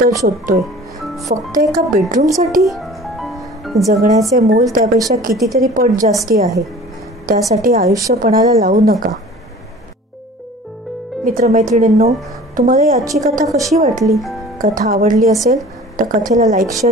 शोधतोय. फक्त एका बेडरूमसाठी? जगण्याचे मोल त्यापेक्षा कितीतरी पट जास्ती आहे. त्यासाठी आयुष्यपणाला लावू नका. मित्रमैत्रिणींनो, तुम्हाला याची कथा कशी वाटली? कथा आवडली असेल तर कथेला लाईक,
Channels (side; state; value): both; normal; correlation 0.44